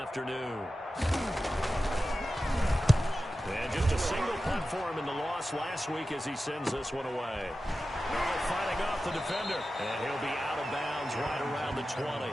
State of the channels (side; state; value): both; normal; correlation 0.93